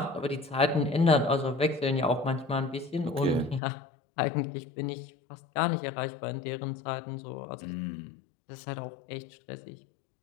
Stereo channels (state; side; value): drops out; right; at 3.6 s